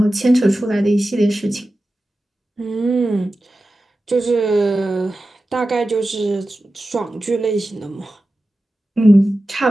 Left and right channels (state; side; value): normal; both; correlation 0.94